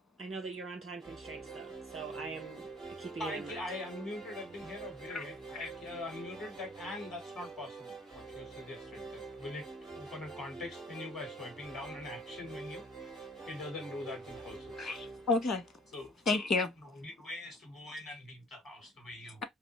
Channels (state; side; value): normal; both; correlation 0.54